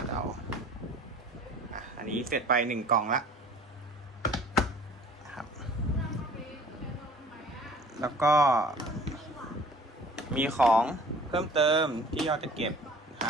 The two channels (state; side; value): normal; both; correlation 0.48